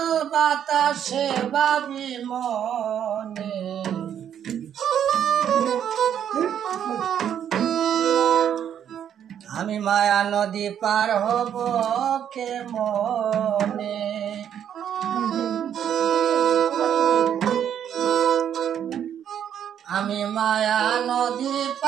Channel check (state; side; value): quieter; left; 9.3 dB